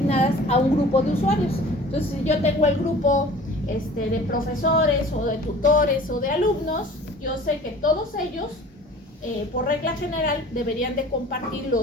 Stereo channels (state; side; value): normal; both; correlation 0.45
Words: a un grupo de usuarios. Entonces, si yo tengo el grupo de profesores o de tutores o de alumnos, yo sé que todos ellos, por regla general, deberían de compartir